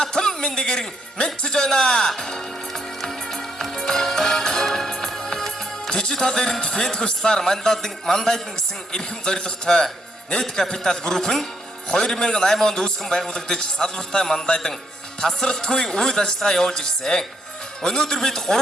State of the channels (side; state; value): both; normal; correlation 0.75